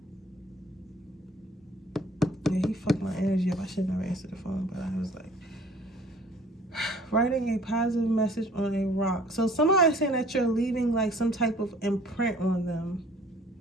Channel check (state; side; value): normal; both; correlation 0.53